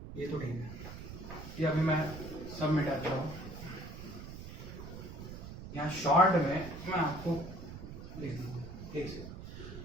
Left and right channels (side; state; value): right; noise; rumble, 11 dB below the sound